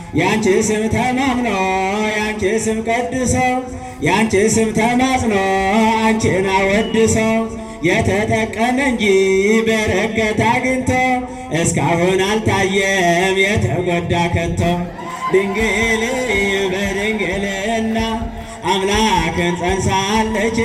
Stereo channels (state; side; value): identical; both; correlation 1.00